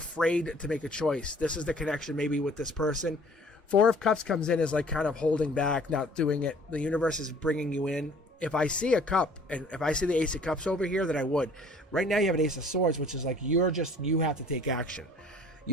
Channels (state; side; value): normal; both; correlation 0.53